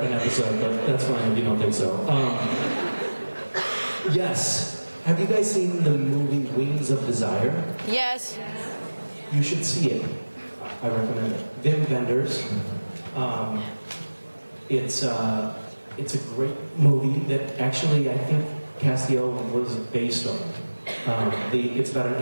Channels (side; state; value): both; inverted; correlation -1.00